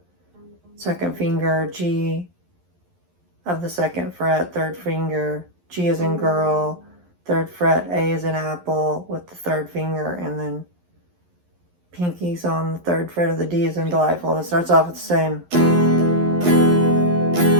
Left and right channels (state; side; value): late; left; 11 ms